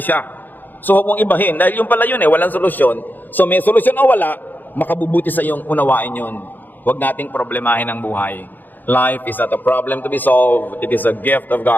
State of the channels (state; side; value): late; right; 0.087 ms